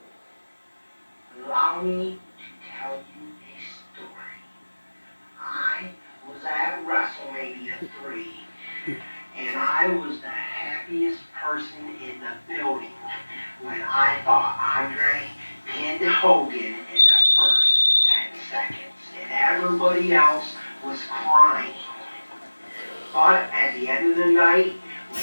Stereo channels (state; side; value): inverted; both; correlation -1.00